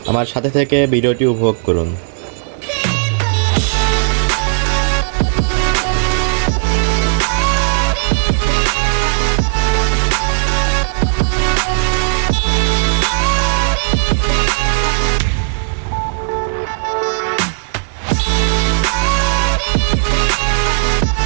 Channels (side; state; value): left; silent; 69 dB below the other